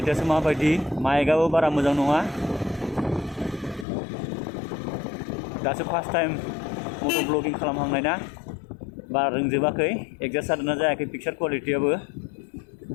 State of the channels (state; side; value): drops out; right; at 3.9 s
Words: माबायदि? माइकआबो बारा मोजां नङा। दासो फार्स्ट टाइम मट' ब्लगिं खालामहांनाय ना, बारा रोंजोबाखै। एडजास्ट जादोंना जायाखै पिक्सार क्वालिटियाबो।